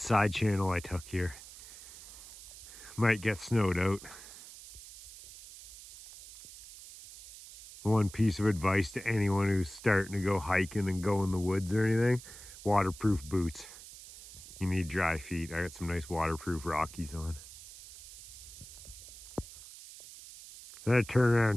channel I took here. Might get snowed out. One piece of advice to anyone who's starting to go hiking and go in the woods or anything: waterproof boots. You need dry feet. I got some nice waterproof Rockies on. Then I turn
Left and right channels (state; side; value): noise; right; hiss, 16 dB below the sound